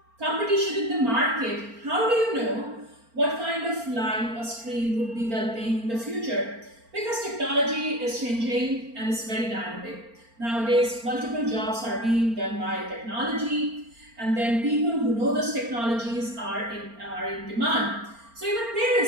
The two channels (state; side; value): late; left; 4.4 ms